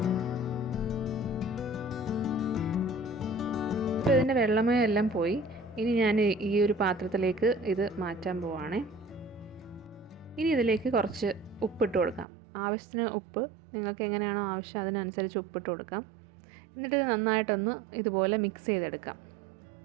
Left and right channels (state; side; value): drops out; left; at 12.2 s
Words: ഇപ്പോൾ ഇതിൻ്റെ വെള്ളമയം എല്ലാം പോയി. ഇനി ഞാൻ ഈ ഒരു പാത്രത്തിലേക്ക് ഇത് മാറ്റാൻ പോവാണേ. ഇനി ഇതിലേക്ക് കുറച്ച് ഉപ്പിട്ട് കൊടുക്കാം. ആവശ്യത്തിന് ഉപ്പ്, നിങ്ങൾക്ക് എങ്ങനെയാണോ ആവശ്യം അതിനനുസരിച്ച് ഉപ്പിട്ട് കൊടുക്കാം. എന്നിട്ട് ഇത് നന്നായിട്ടൊന്ന് ഇതുപോലെ മിക്സ് ചെയ്തെടുക്കാം.